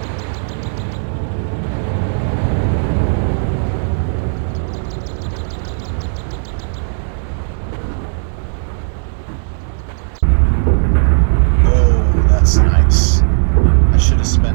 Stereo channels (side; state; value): left; silent; digital silence